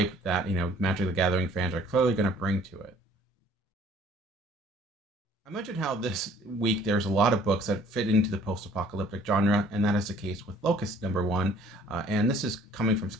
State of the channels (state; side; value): normal; both; correlation 0.56